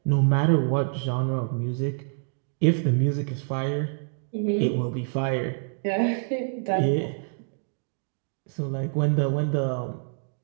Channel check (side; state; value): left; silent; digital silence